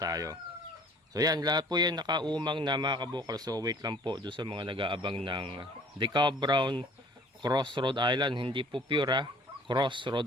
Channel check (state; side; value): normal; both; correlation 0.52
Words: So yan, lahat po yan nakaumang na mga kabukal. So wait lang po doon sa mga nag-aabang ng Decab Brown Cross Rhode Island. Hindi po pure Cross